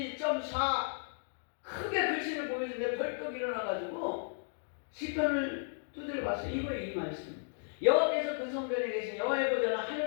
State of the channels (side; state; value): right; silent; digital silence